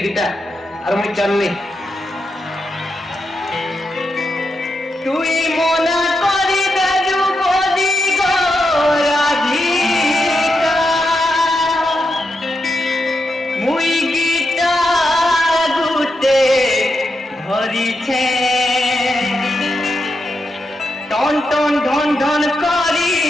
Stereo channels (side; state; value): both; normal; correlation 0.85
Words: গিটা আর মুই চালনি তুই মনা করি দাজু বলি গো রাধিকা মুই গিটা গুতে ধরিছে টন টন ঢন ঢন করি